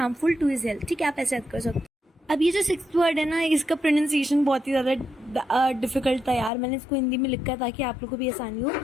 to his health, ठीक है। आप ऐसे याद कर सकते हो। अब ये जो 6th वर्ड है ना, इसका प्रोनाउंसिएशन बहुत ही ज़्यादा डिफिकल्ट था यार, मैंने इसको हिंदी में लिखा ताकि आप लोगों को भी आसानी हो।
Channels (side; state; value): right; drops out; at 6.5 s